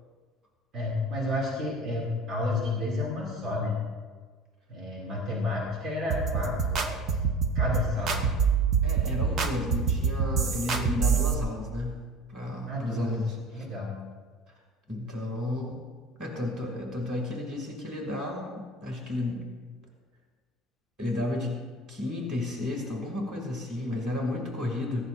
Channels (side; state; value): both; normal; correlation 0.40